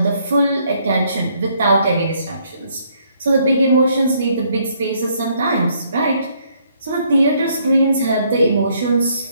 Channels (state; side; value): inverted; both; correlation -0.68